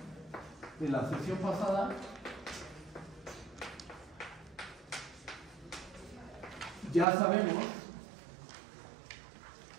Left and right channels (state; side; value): drops out; left; at 7.1 s